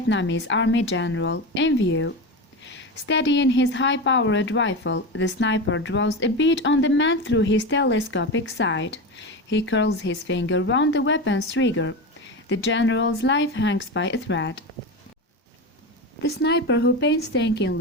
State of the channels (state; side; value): normal; both; correlation 0.21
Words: Army general in view. Steadying his high-powered rifle, the sniper draws a bead on the man through his telescopic sight. He curls his finger round the weapon's trigger. The general's life hangs by a thread. The sniper who